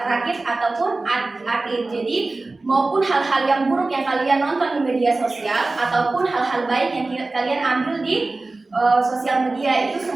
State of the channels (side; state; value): left; quieter; 3.3 dB